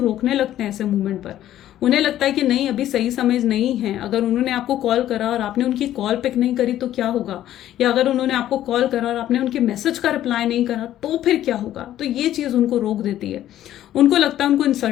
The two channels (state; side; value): quieter; right; 12.5 dB